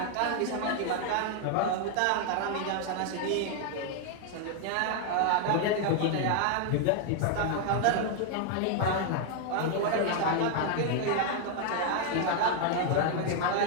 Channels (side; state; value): both; different; correlation 0.00